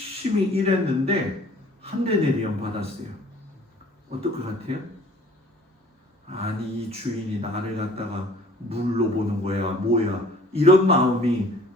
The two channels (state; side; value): normal; both; correlation 0.52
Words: 일했는데 한 데나리온 받았어요. 어떨 것 같아요? 아니 이 주인이 나를 갖다가 물로 보는 거야 뭐야 이런 마음이